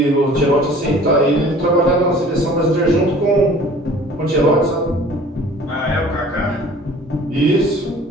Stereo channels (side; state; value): both; normal; correlation 0.48